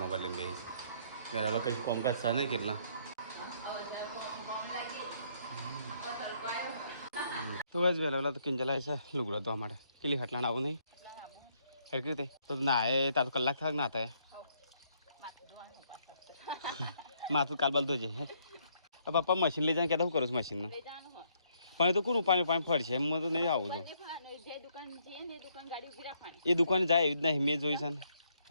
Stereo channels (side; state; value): both; inverted; correlation -0.70